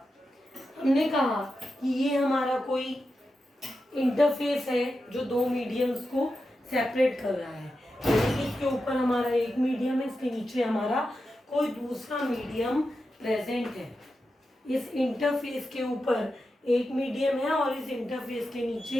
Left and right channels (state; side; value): normal; both; correlation 0.89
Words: हमने कहा कि ये हमारा कोई इंटरफेस है जो दो मीडियम्स को सेपरेट कर रहा है। इसके ऊपर हमारा एक मीडियम है, इसके नीचे हमारा कोई दूसरा मीडियम प्रेजेंट है। इस इंटरफेस के ऊपर एक मीडियम है और इस इंटरफेस के